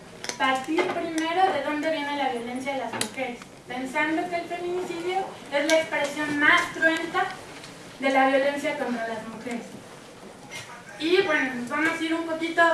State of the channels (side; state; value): both; identical; correlation 1.00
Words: partir primero de dónde viene la violencia de las mujeres, pensando que el feminicidio es la expresión más cruenta de la violencia contra las mujeres. Y bueno, nos vamos a ir un poquito